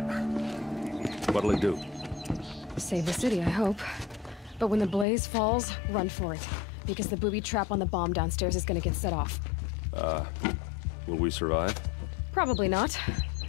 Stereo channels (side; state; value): right; drops out; at 5.1 s